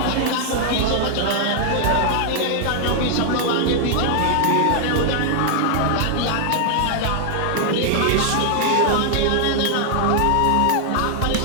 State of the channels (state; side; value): different; both; correlation 0.00